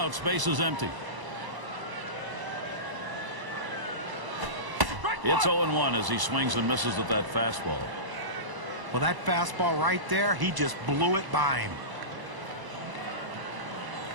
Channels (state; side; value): late; left; 1.0 ms